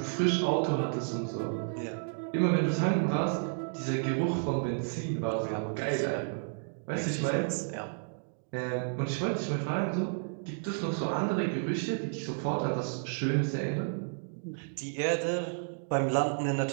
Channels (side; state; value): left; silent; digital silence